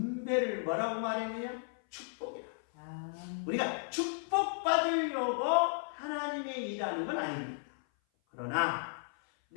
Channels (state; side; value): silent; right; 55 dB below the other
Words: 뭐라고 말했느냐? 축복이라. 우리가 축복받으려고 하나님의 일하는 건 아닙니다. 그러나